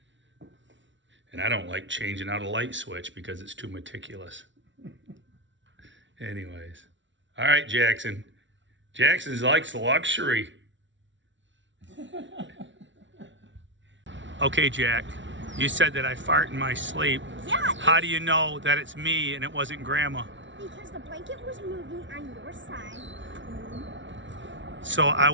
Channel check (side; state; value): left; late; 0.55 ms